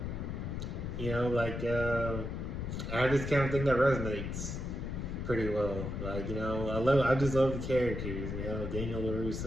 I just kind of think that resonates pretty well. Like, I just love the characters, Daniel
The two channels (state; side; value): noise; left; rumble, 4 dB below the sound